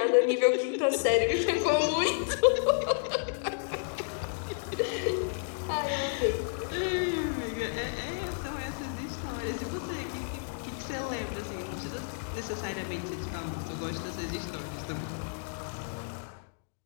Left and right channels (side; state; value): right; silent; digital silence